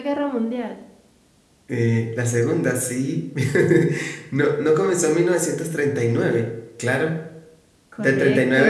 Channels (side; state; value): both; identical; correlation 1.00